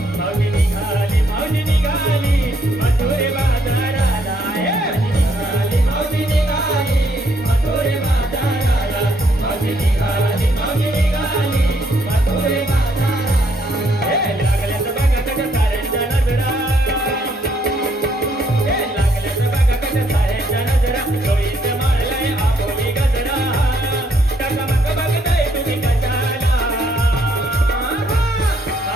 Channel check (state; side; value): normal; both; correlation 0.70